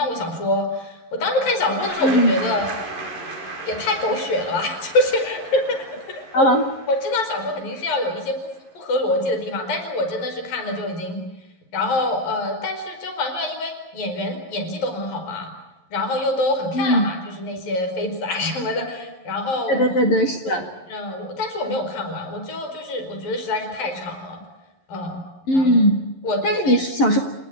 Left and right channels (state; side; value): late; right; 11 ms